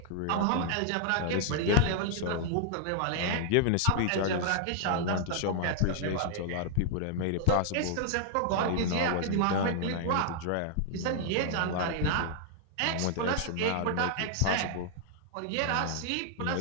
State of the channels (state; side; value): different; both; correlation -0.01